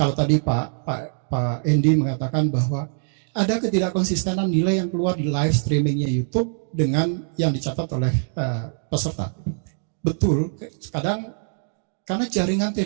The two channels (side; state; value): left; silent; digital silence